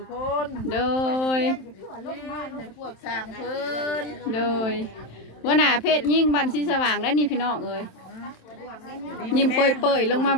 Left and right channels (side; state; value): right; late; 27 ms